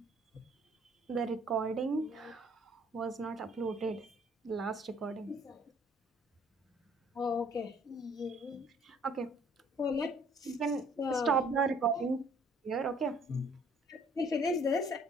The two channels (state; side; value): normal; both; correlation 0.58